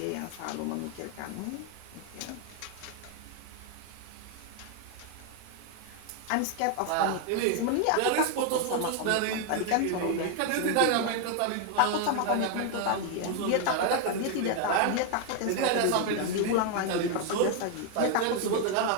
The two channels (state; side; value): different; both; correlation 0.01